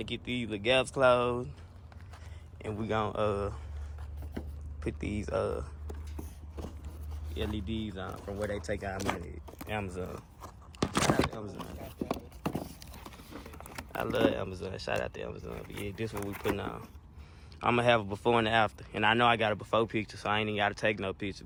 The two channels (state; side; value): identical; both; correlation 1.00